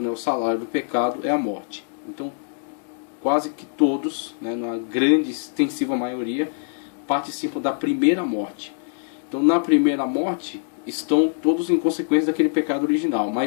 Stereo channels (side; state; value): right; silent; digital silence